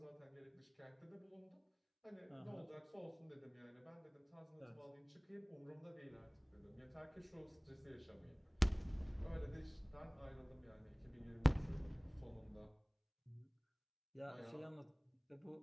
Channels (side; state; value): both; identical; correlation 1.00